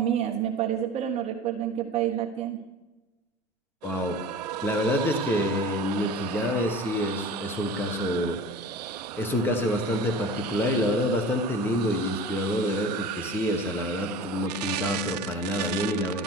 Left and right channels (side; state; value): both; normal; correlation 0.37